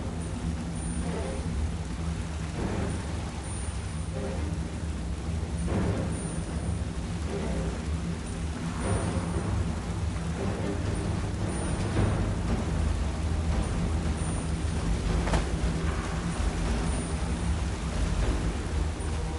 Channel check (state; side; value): identical; both; correlation 1.00